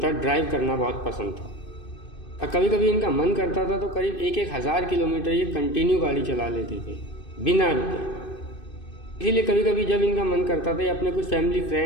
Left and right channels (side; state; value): right; late; 2.6 ms